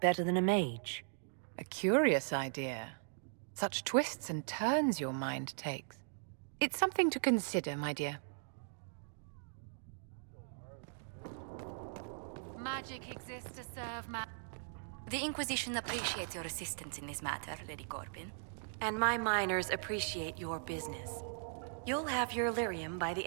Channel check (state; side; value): silent; left; digital silence